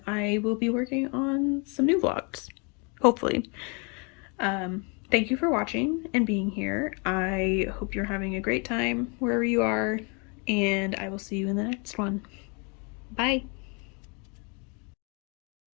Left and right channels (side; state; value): right; quieter; 33.6 dB